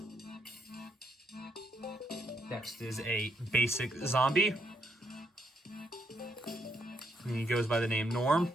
Next is a basic zombie. And he goes by the name Norm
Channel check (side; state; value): both; normal; correlation 0.76